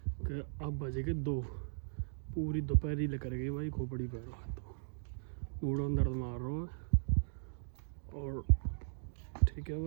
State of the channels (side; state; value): left; silent; digital silence